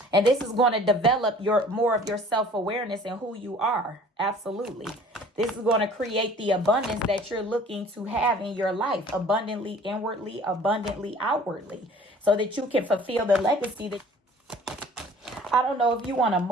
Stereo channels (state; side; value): normal; both; correlation 0.50